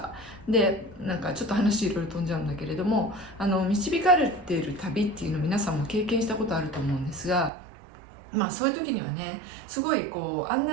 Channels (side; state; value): left; drops out; at 7.5 s